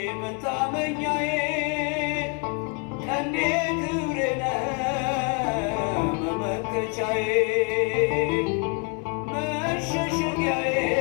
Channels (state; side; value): quieter; right; 33.9 dB